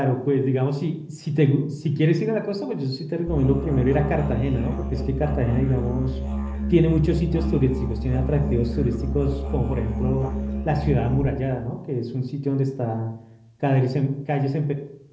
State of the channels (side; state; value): both; identical; correlation 1.00